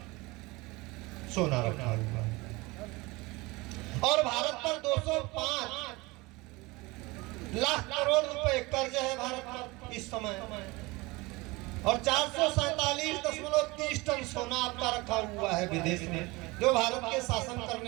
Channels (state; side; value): quieter; left; 23.2 dB